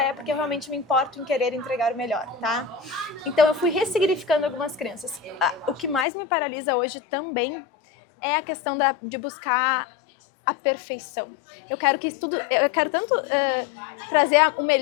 é porque eu realmente me importo em querer entregar o melhor, tá? Então, eu fui ressignificando algumas crenças. O que mais me paralisa hoje também é a questão de buscar a perfeição. Eu quero tanto trazer o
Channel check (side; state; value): right; drops out; at 6.1 s